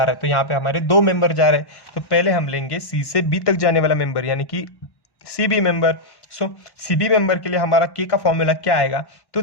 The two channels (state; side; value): late; right; 1.1 ms